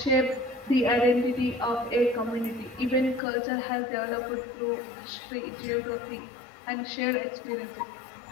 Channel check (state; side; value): drops out; right; at 3.2 s